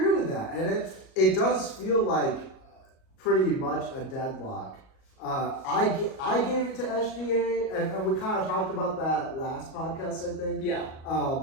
with that, and it does feel like pretty much a deadlock. I gave it to SGA, and we kind of talked about that last podcast, I think. Yeah.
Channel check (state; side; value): late; right; 38 ms